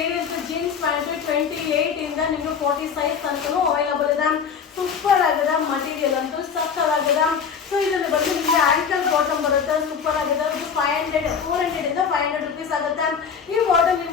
jeans pant 28 ಇಂದ ನಿಮ್ಗೆ 40 ಸೈಜ್ ತನಕ ಅವೈಲಬಲ್ ಇದೆ. ಸೂಪರ್ ಆಗಿದೆ. ಮಟೀರಿಯಲ್ ಅಂತೂ ಸಕ್ಕತ್ತಾಗಿದೆ. ಸೊ ಇದರಲ್ಲಿ ಬಂದು ನಿಮಗೆ ಆಂಕಲ್ ಬಾಟಮ್ ಬರುತ್ತೆ. ಸೂಪರ್ ಆಗಿದೆ. ಇದು 400 ಇಂದ 500 ರೂಪೀಸ್ ಆಗುತ್ತೆ. ಈ ಬಾಟಮ್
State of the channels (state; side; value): quieter; right; 6.6 dB